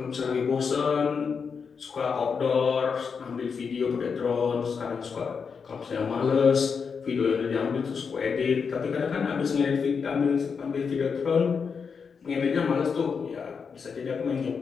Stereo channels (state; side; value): quieter; right; 5.9 dB